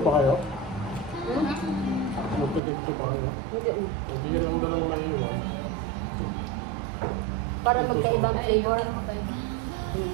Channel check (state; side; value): drops out; left; at 2.6 s